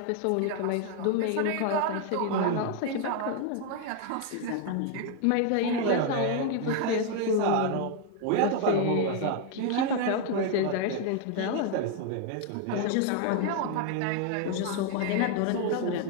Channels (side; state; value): both; different; correlation 0.00